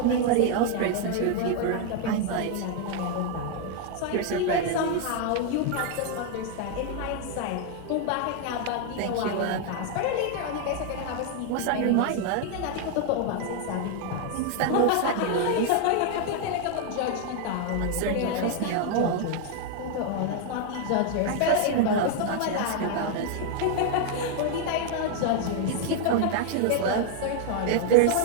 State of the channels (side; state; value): both; different; correlation 0.00